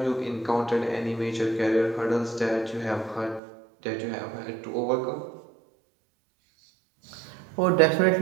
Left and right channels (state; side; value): drops out; left; at 3.4 s